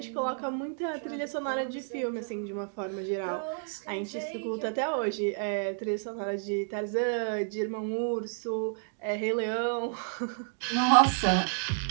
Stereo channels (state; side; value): silent; left; digital silence